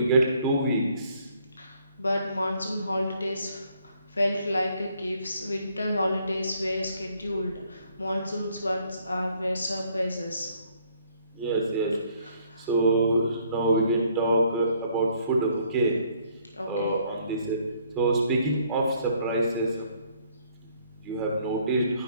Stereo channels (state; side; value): inverted; both; correlation -0.65